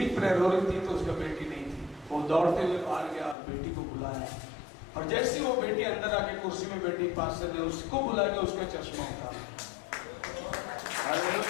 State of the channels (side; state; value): right; drops out; at 3.4 s